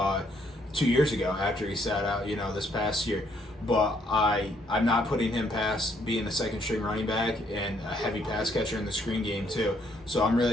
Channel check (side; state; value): both; normal; correlation 0.69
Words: 2 years ago after he sat out, this past year. But I'm not putting him past being a second string running back and a heavy pass catcher in the screen game too. So I'm